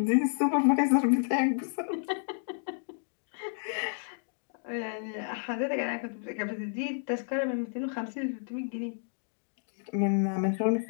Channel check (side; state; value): right; silent; digital silence